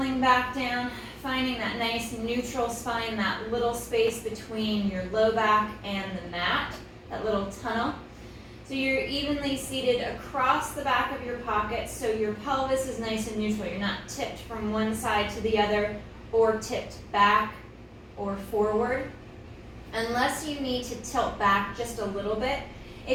back down, finding that nice neutral spine, that little space between your low back and the mat, that little tunnel. So you're evenly seated across the back of your pocket, so your pelvis is nice and neutral. You're not tipped from one side to the other or tipped back or forward. Unless you need to tilt back just a little bit.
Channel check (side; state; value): both; identical; correlation 1.00